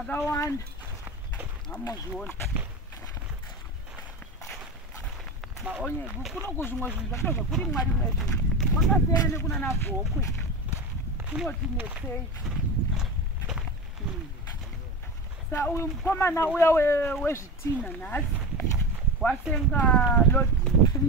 Hamozviona. Maonye kuno kuzvimwe zvinhu zvakazva kuri mwari mwezvi. Kwakasiyana nekuna navhokwe. Kunoti netsei. Sa uyu mukomana uya wezvitina nhasi wasenga lodi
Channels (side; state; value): both; normal; correlation 0.25